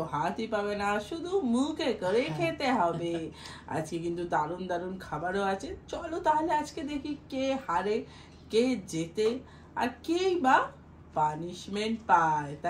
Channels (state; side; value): identical; both; correlation 1.00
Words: হাতই পাবে না, শুধু মুখে করে খেতে হবে। আজকে কিন্তু দারুণ দারুণ খাবারও আছে। চলো তাহলে আজকে দেখি কে হারে, কে জেতে, আর কেই বা পানিশমেন্ট পায়,